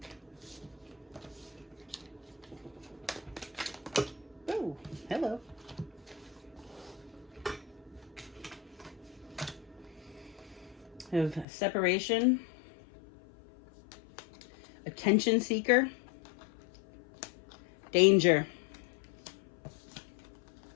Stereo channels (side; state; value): right; drops out; at 11.5 s